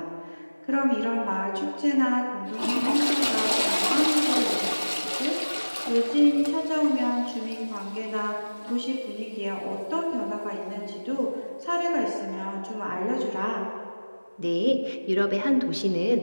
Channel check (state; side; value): inverted; both; correlation -1.00